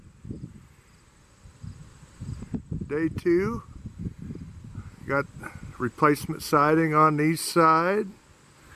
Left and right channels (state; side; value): identical; both; correlation 1.00